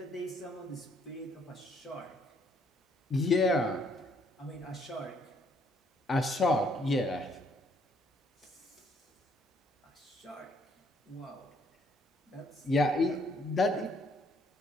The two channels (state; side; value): normal; both; correlation 0.67